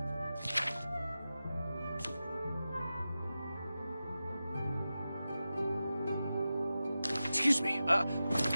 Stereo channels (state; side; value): inverted; both; correlation -0.93